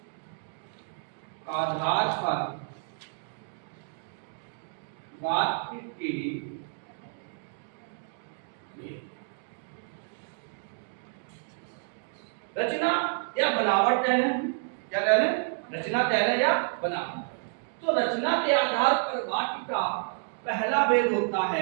आधार पर वाक्य के रचना या बनावट कह लें, क्या कह लें, रचना कह लें या बनावट। तो रचना के आधार पर वाक्य का पहला भेद होता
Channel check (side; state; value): left; silent; digital silence